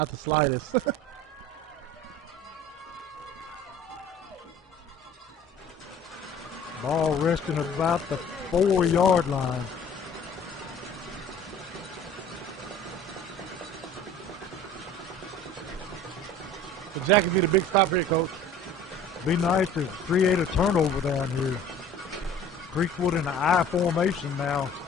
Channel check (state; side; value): normal; both; correlation 0.46